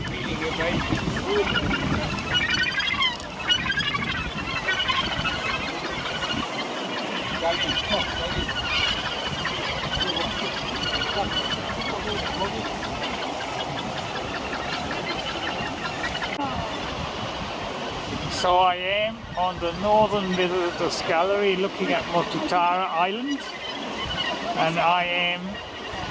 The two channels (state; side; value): identical; both; correlation 1.00